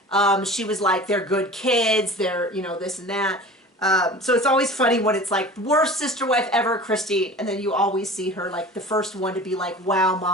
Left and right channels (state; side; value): normal; both; correlation 0.38